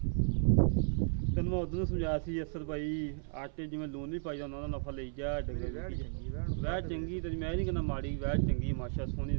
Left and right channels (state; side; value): silent; left; 55 dB below the other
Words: ਤੈਨੂੰ ਮੈਂ ਉਦੋਂ ਸਮਝਾਇਆ ਸੀ ਅਸਰ ਭਾਈ ਆਟੇ ਜਿਵੇਂ ਲੂਣ ਨਹੀਂ ਪਾਈਦਾ ਉਹਨਾਂ ਦਾ ਨਫਾ ਲਈ ਜਾ ਡੰਗਰ ਵੈੜ ਚੰਗੀ ਵੈੜ ਚੰਗੀ ਤੇ ਮੈਂ ਨਹੀਂ ਕਹਿੰਦਾ ਮਾੜੀ ਵੈੜ ਚੰਗੀ ਮਾਸ਼ਾ ਸੋਹਣੀ